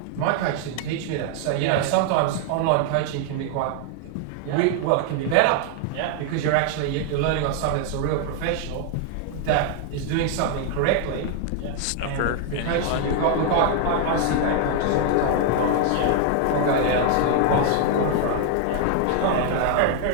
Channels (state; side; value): different; both; correlation 0.00